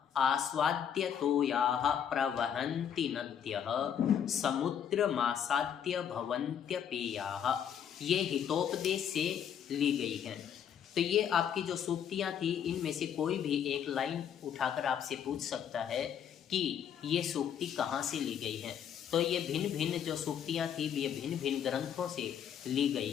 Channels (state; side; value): quieter; right; 8.6 dB